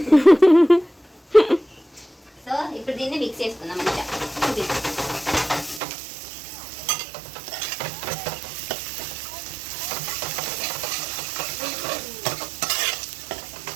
సో ఇప్పుడు దీన్ని మిక్స్ చేసుకుందాం మంచిగా.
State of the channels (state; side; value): drops out; left; at 5.8 s